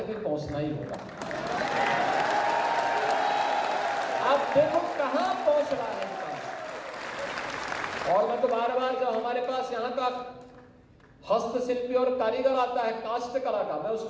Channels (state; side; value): identical; both; correlation 1.00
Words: भी पहुंचना ही होगा। आप देखो कहां पहुंच रहा है। और मैं तो बार बार जब हमारे पास यहाँ का हस्तशिल्पी और कारीगर आता है काष्ट कला का, मैं